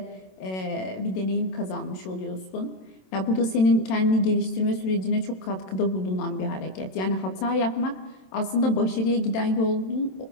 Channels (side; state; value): right; late; 27 ms